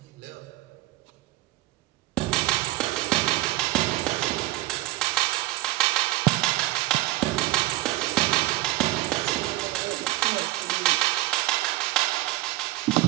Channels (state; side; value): quieter; left; 18.7 dB